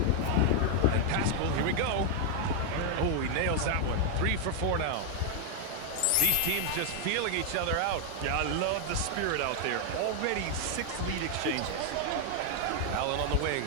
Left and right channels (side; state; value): both; different; correlation 0.00